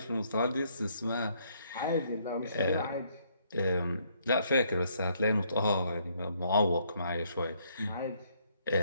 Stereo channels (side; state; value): both; inverted; correlation -0.69